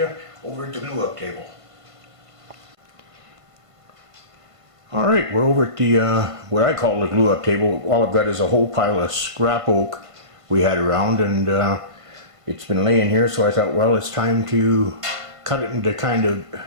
over at the glue up table. Alright, we're over at the, what I call the glue up table. All I've got is a whole pile of scrap oak we had around, and it's been laying here, so I thought, well, it's time to cut it into kind of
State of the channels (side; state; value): left; late; 1.5 ms